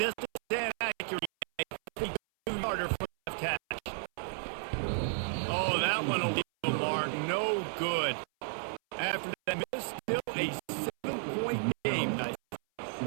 and accuracy. 3-yarder for left catch. Oh, that one will be a mark. No good. After that miss, still a 7-point game. Nice.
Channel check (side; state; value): left; silent; 56 dB below the other